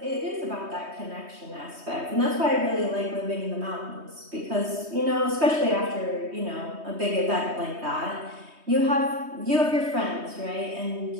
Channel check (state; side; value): late; left; 3.2 ms